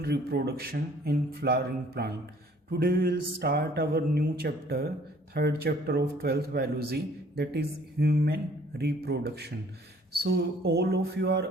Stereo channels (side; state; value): both; normal; correlation 0.58